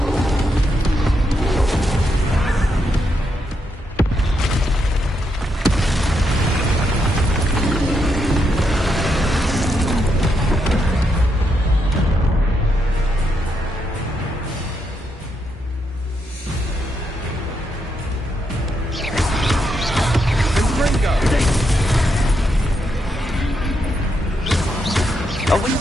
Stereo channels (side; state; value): both; normal; correlation 0.80